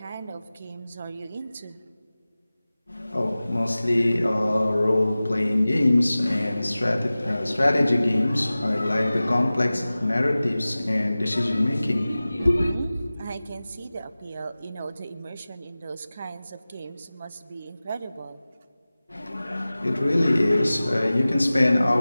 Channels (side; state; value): both; inverted; correlation -0.97